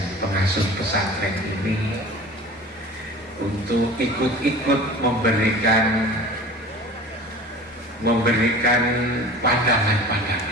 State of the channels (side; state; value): both; normal; correlation 0.39